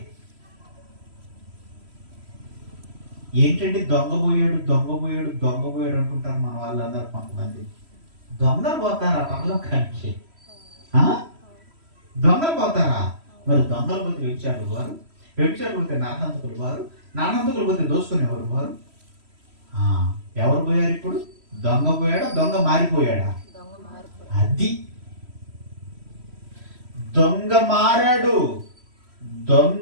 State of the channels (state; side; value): late; left; 3.1 ms